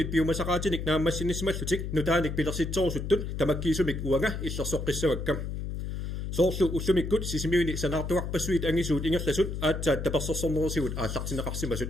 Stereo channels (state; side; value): noise; left; hum, 4 dB below the sound